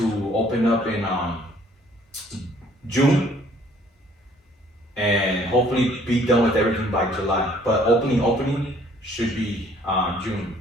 open up in June and hopefully be done with everything by July. But opening should be June,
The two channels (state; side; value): normal; both; correlation 0.59